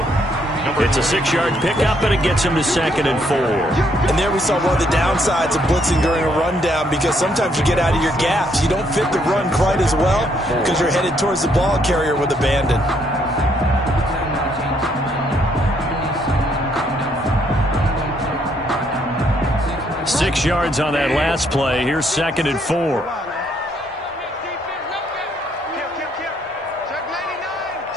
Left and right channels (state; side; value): normal; both; correlation 0.71